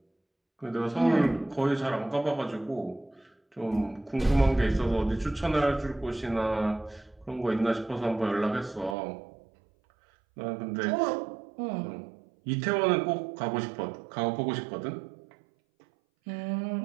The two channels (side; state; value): left; drops out; at 9.0 s